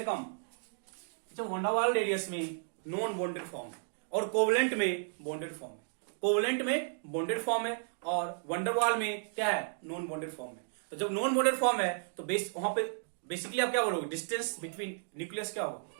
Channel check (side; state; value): left; silent; digital silence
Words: कम। अच्छा, वन डर वाल्स रेडियस में नॉन बॉन्डेड फॉर्म है और कोवेलेंट में बॉन्डेड फॉर्म है। कोवेलेंट में बॉन्डेड फॉर्म है और वन डर वाल्स में क्या है, नॉन बॉन्डेड फॉर्म है। तो जब नॉन बॉन्डेड फॉर्म है तो वहां पे बेसिकली आप क्या बोलोगे, डिस्टेंस बिटवीन न्यूक्लियस क्या